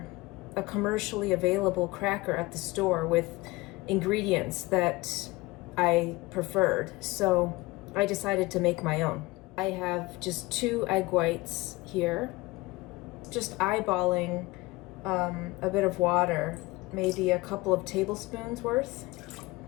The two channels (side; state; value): right; quieter; 21.6 dB